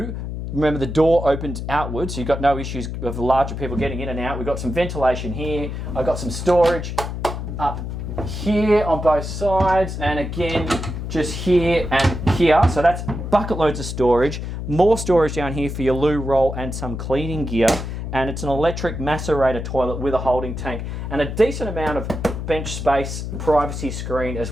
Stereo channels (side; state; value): left; noise; hum, 5 dB below the sound